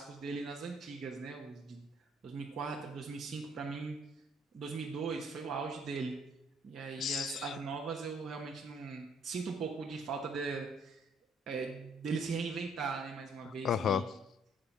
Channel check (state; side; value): normal; both; correlation 0.62